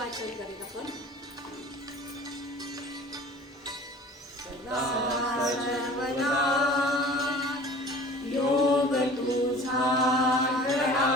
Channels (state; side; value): normal; both; correlation 0.45